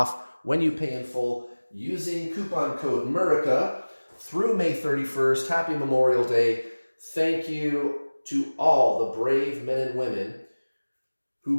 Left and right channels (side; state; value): both; inverted; correlation -1.00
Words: when you pay in full using coupon code Murica through May 31st. Happy Memorial Day. Thank you to all the brave men and women